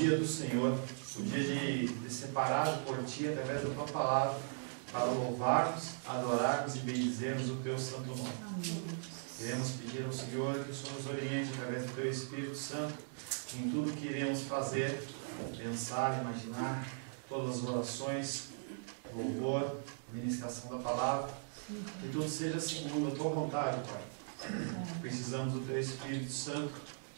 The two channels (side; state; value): left; silent; 52 dB below the other